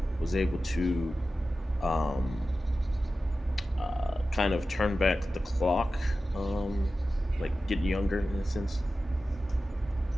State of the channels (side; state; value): both; normal; correlation 0.94